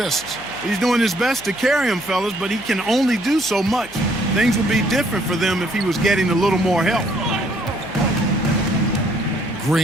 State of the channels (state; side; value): noise; left; hum, 23 dB below the sound